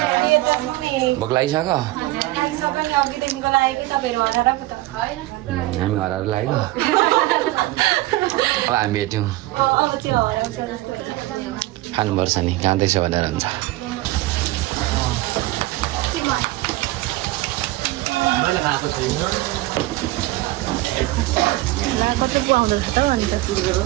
भोक लागिसक्यो हामी हराएर लाग्यो अब हामी भेट्यौँ खानुपर्छ नि जाँदैछ भनेर हुन्छ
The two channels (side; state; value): left; quieter; 18.2 dB